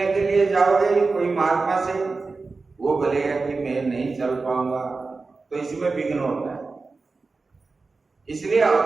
के लिए जाओगे? कोई महात्मा से, वो बोलेगा कि मैं नहीं चल पाऊंगा, तो इसमें विघ्न होता है। इसलिए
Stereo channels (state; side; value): quieter; left; 4.0 dB